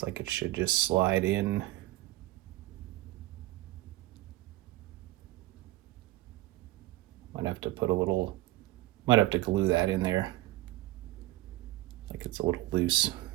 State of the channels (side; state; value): left; quieter; 17.4 dB